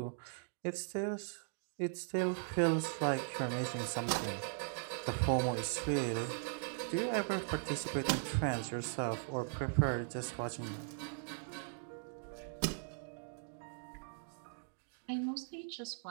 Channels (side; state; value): left; silent; digital silence